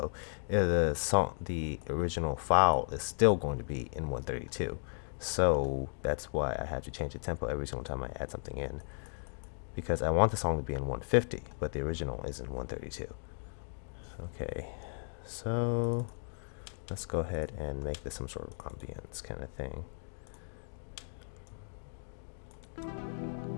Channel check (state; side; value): silent; right; digital silence